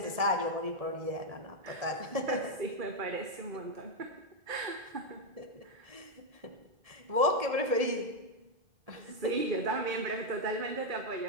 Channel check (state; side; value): late; left; 1.7 ms